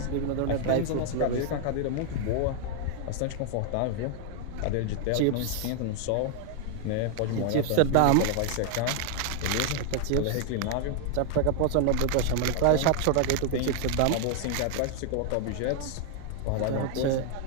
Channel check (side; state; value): both; different; correlation 0.00